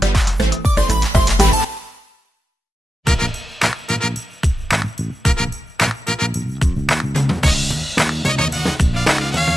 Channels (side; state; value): both; normal; correlation 0.90